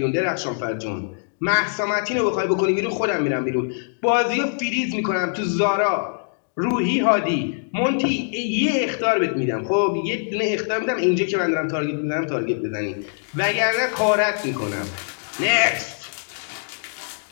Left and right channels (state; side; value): silent; right; digital silence